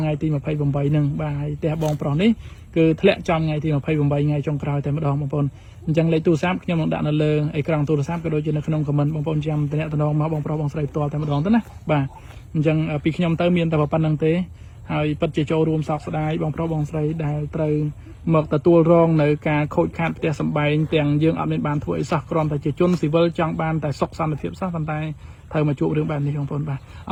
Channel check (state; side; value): identical; both; correlation 1.00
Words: ងៃទី28ហ្នឹងបាទហើយផ្ទះបងប្រុសនេះគឺធ្លាក់ចំថ្ងៃទី28ថ្ងៃចុងក្រោយតែម្ដងបងប្អូនអញ្ចឹងលេខទូរស័ព្ទខ្ញុំនឹងដាក់នៅលើអេក្រង់ទូរស័ព្ទក៏ដូចជានៅក្នុងខមមិនបងប្អូនចាំតំណងមកបងប្រុសបងស្រីផ្ទាល់តែម្ដងទៅណាបាទអញ្ចឹងពីខ្ញុំទៅមានតែប៉ុណ្្នឹងទេហើយពិតជាចូលរួមសោកស្ដាយបងប្រុសបងស្រីដែលត្រូវមកទទួលរងនៅការខូចខាតផ្ទះសម្បែងទាំងយើងអត់មានបានធ្វើអីសោះគ្រាន់តែជាជនស៊ីវិលចង់បានតែសុខសន្តិភាពសោះប៉ុន្តែត្រូវមកជួបរឿងបែបនេះបងប្អូនបាទ